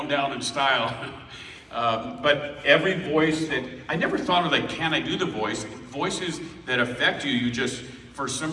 down in style. But every voice that, I never thought of like, can I do the voice? Voices that affect you, you just, for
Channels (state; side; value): identical; both; correlation 1.00